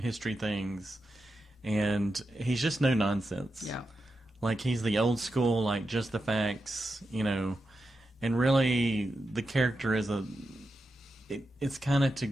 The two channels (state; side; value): normal; both; correlation 0.89